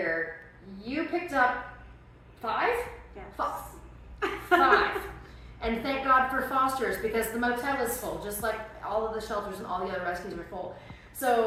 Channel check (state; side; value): identical; both; correlation 1.00